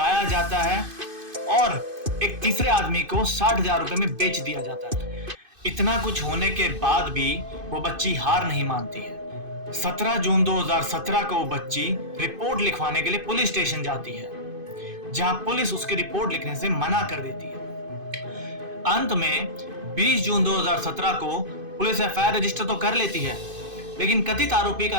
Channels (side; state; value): left; late; 2.5 ms